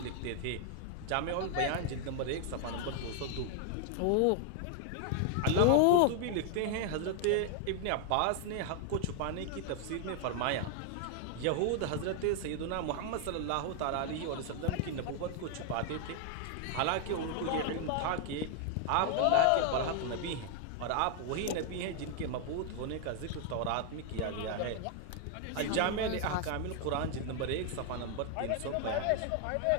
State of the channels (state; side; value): different; both; correlation 0.00